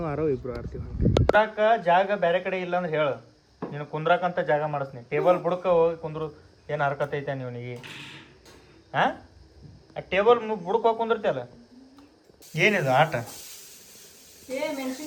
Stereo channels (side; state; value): both; identical; correlation 1.00